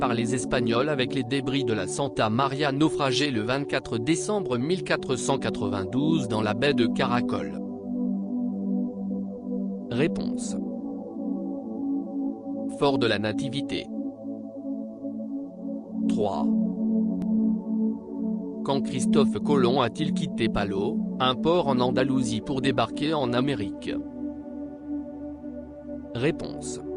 les Espagnols avec les débris de la Santa Maria naufragé le 24 décembre 1492 dans la baie de Caracol? Réponse. Fort de la Nativité. 3. Quand Christophe Colomb a-t-il quitté Palos, un port en Andalousie pour débarquer en Amérique? Réponse.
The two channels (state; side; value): identical; both; correlation 1.00